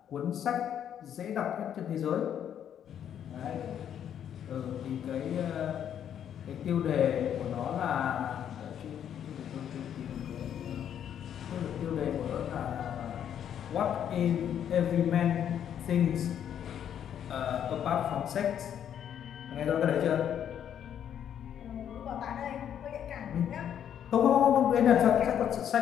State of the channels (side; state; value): right; quieter; 9.4 dB